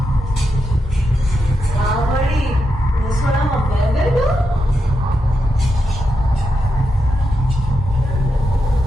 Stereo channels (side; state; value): both; normal; correlation 0.85